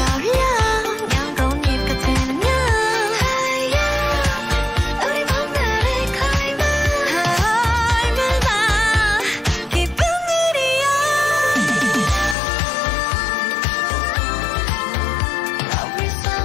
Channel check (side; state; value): right; drops out; at 12.4 s